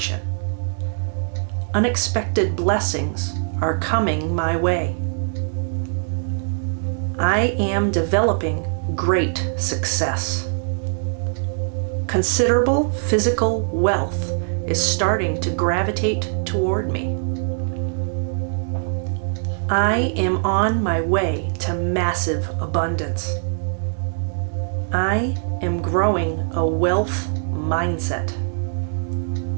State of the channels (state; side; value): silent; left; digital silence